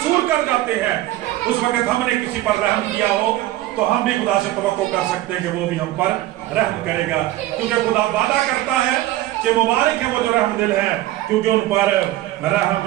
کر جاتے ہیں، اس وقت ہم نے کسی پر رحم کیا ہو تو ہم بھی خدا سے توقع کر سکتے ہیں کہ وہ بھی ہم پر رحم کرے گا، کیونکہ خدا وعدہ کرتا ہے کہ مبارک ہے وہ جو رحم دل ہے کیونکہ ان پر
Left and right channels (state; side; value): quieter; left; 15.6 dB